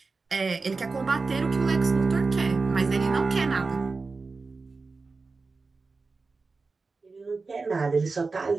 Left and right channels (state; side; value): quieter; left; 4.1 dB